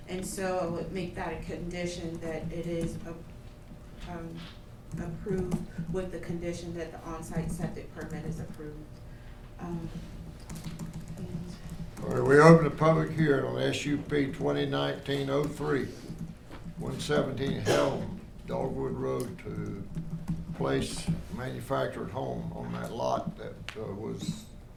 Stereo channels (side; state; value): both; identical; correlation 1.00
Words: so I would make that a condition that it is approved with the condition that the on-site septic permit is approved. All right, we open the public hearing on SUP 2019-03, 117 Helm Dogwood Road to place manufactured home on that lot that was